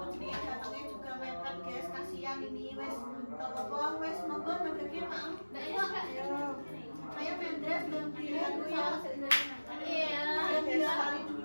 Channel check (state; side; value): inverted; both; correlation -1.00